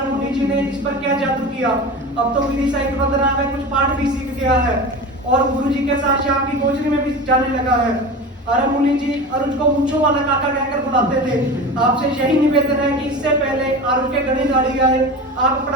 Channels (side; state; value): both; normal; correlation 0.30